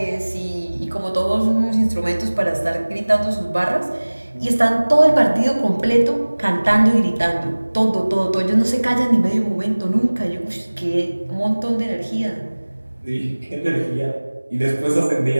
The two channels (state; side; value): inverted; both; correlation -1.00